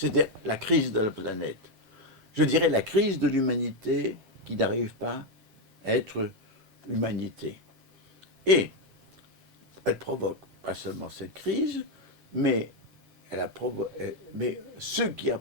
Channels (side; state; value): left; late; 7.5 ms